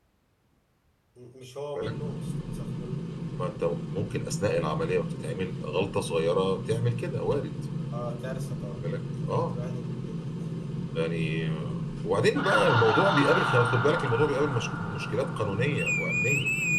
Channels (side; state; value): both; identical; correlation 1.00